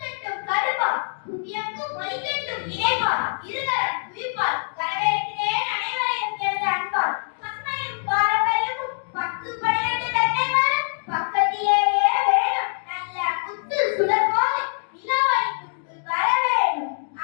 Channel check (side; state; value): right; silent; digital silence